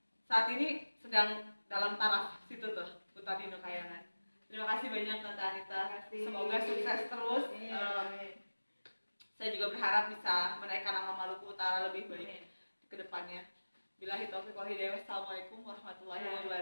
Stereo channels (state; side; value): inverted; both; correlation -1.00